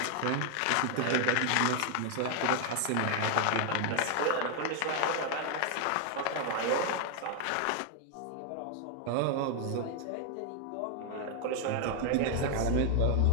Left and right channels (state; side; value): different; both; correlation 0.00